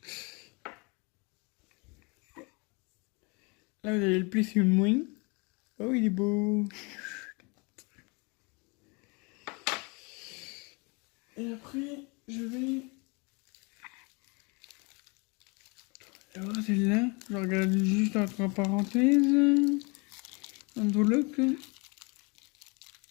Là, vous avez le Plissum Wing. Oh, il est beau. Et après, je vais... Alors, celle-là, je regarde juste entre parenthèses. Enveloppe.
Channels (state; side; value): quieter; right; 30.0 dB